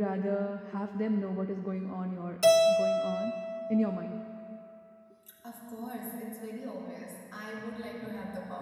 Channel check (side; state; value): both; identical; correlation 1.00